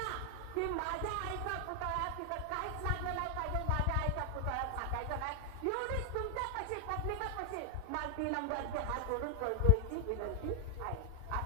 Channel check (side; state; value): both; different; correlation 0.00